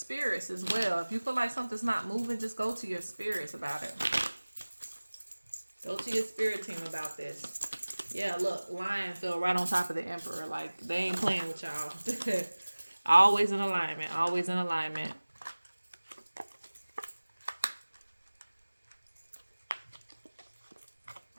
as well. If you feel like something's not moving, just go to your spirits about it. Go to your spirit team about this. Yeah, look, Lion fell right on top of the Emperor. Like, they ain't playing with y'all. Always in alignment. Always in alignment.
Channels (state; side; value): inverted; both; correlation -1.00